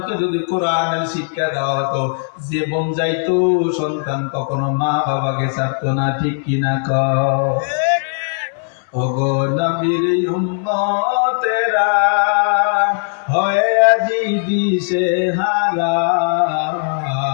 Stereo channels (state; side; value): silent; right; 64 dB below the other